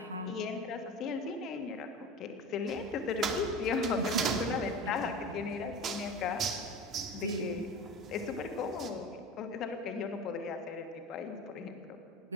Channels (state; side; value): normal; both; correlation 0.32